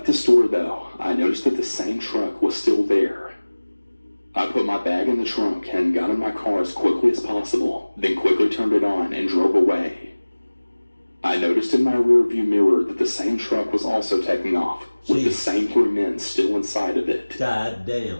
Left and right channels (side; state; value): both; inverted; correlation -1.00